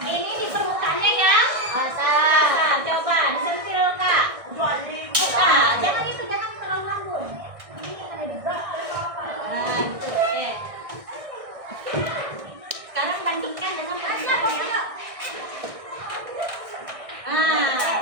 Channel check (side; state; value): left; late; 1.6 ms